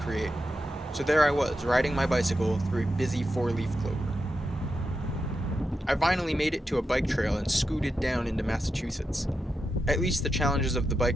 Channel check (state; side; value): normal; both; correlation 0.88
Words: So there I was, riding my bicycle through a busy four-leaf clover. I finally made it to a bike trail and scooted down into Massachusetts. At least the challenges of the